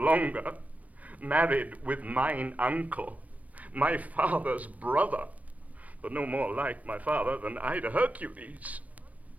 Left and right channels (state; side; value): late; left; 0.070 ms